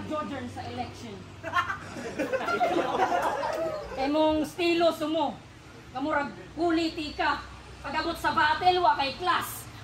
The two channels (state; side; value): identical; both; correlation 1.00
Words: Jordan sa election. Kay mong stilo sumo. Kamurag politika. Pag-abot sa battle, wa kay class.